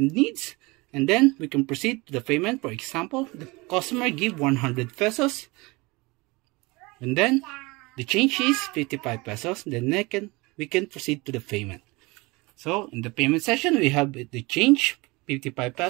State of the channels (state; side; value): quieter; left; 24.2 dB